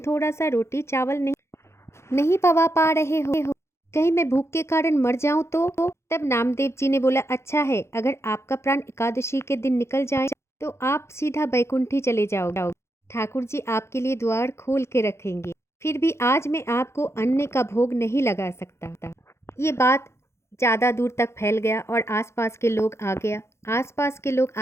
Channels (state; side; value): late; right; 0.13 ms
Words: सा रोटी चावल नहीं पवा पा रहे हो, कहीं मैं भूख के कारण मर जाऊं तो? तब नामदेव जी ने बोला, अच्छा है, अगर आपका प्राण एकादशी के दिन निकल जाए तो आप सीधा बैकुंठी चले जाओगे, ठाकुर जी आपके लिए द्वार खोल के रखेंगे, फिर भी आज मैं आपको अन्न का भोग नहीं लगा सकता। ये बात ज़्यादा दूर तक फैल गया और आसपास के लोग आ गया। आसपास के लोग